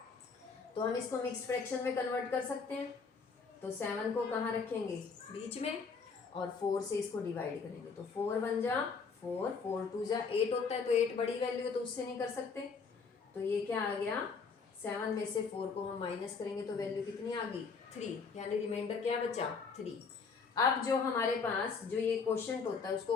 तो हम इसको मिक्स फ्रैक्शन में कन्वर्ट कर सकते हैं। तो 7 को कहाँ रखेंगे, बीच में, और 4 से इसको डिवाइड करेंगे। तो 4 1 जा 4, 4 2 जा 8 होता है, तो 8 बड़ी वैल्यू है तो उससे नहीं कर सकते। तो ये क्या आ गया, 7 में से 4 को हम माइनस करेंगे तो वैल्यू कितनी आ गई, 3, यानी रिमाइंडर क्या बचा, 3। अब जो हमारे पास जो ये क्वोशंट होता है उसको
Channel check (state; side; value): quieter; right; 5.1 dB